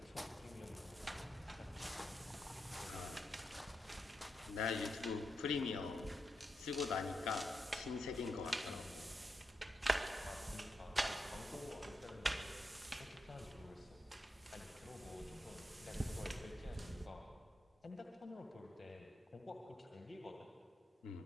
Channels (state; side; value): normal; both; correlation 0.85